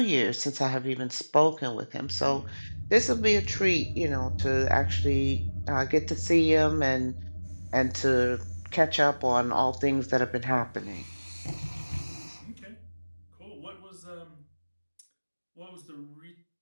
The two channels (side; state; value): both; inverted; correlation -1.00